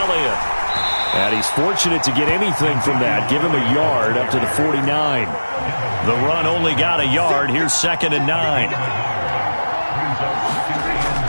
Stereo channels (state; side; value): inverted; both; correlation -1.00